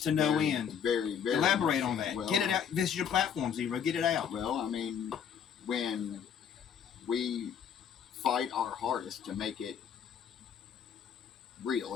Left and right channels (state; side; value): quieter; right; 8.0 dB